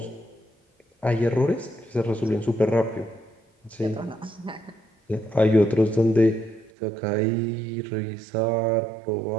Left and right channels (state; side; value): drops out; left; at 6.7 s